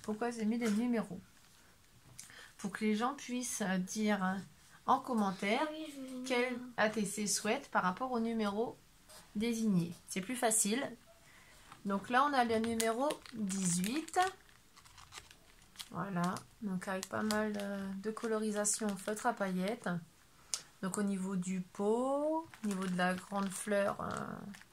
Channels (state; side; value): identical; both; correlation 1.00